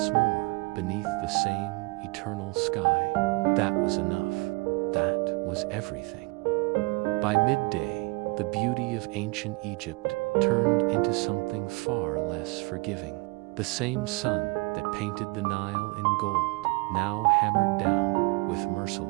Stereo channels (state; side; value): quieter; left; 27.2 dB